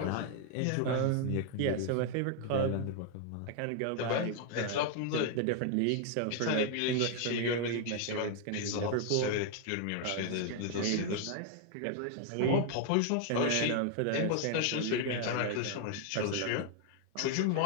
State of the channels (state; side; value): different; both; correlation 0.00